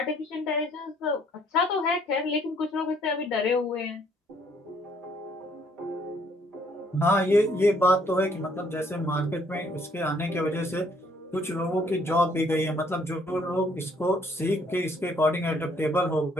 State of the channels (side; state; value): both; normal; correlation 0.64